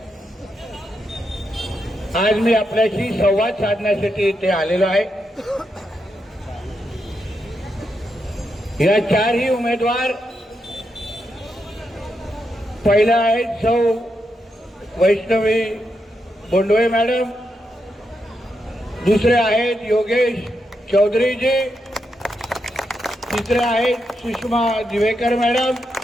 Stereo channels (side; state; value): both; normal; correlation 0.83